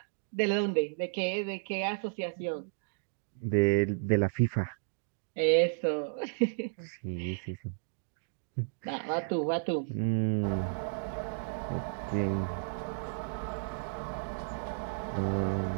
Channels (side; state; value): left; silent; digital silence